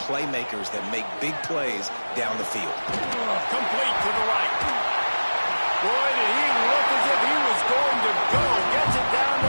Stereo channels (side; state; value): both; inverted; correlation -1.00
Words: playmakers that make big plays down the field. Complete to the right. Boy, did he look as if he was going to go. Gets it down to